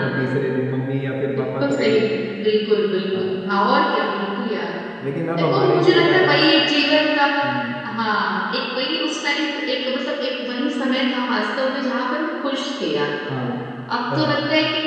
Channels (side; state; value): both; identical; correlation 1.00